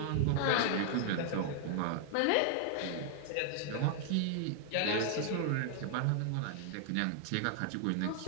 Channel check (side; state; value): both; different; correlation 0.00